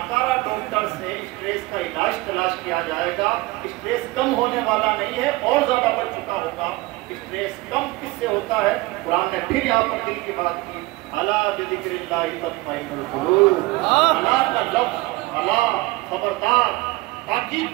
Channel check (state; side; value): quieter; left; 21.4 dB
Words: ڈاکٹر سے اسٹریس کا علاج تلاش کیا جائے گا، اسٹریس کم ہونے والا نہیں ہے، اور زیادہ بڑھ چکا ہوگا۔ اسٹریس کم کس سے ہوتا ہے؟ قرآن نے پھر یہاں پر دل کی بات کی، الا بذکر اللہ تطمئن القلوب۔ اللہ کا لفظ الا خبردار